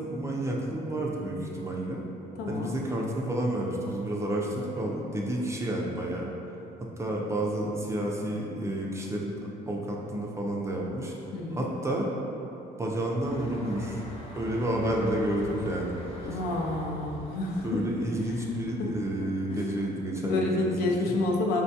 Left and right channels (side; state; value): both; normal; correlation 0.62